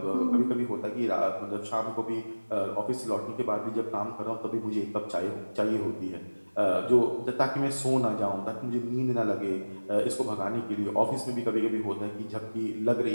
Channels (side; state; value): both; inverted; correlation -1.00